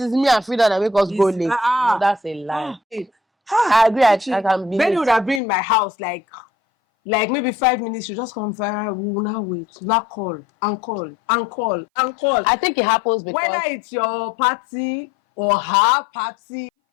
me and Frida that make us go late? No, that's a lie. I agree. I can be. Benny would have been in my house like maybe 5 minutes. You just come fire. We will now wait. Not call and call and call and call. I think it happens because whether it's your party or her party.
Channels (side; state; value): right; drops out; at 5.4 s